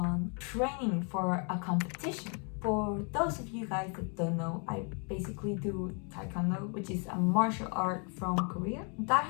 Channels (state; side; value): quieter; right; 37.3 dB